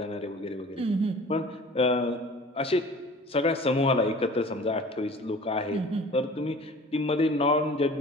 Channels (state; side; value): normal; both; correlation 0.44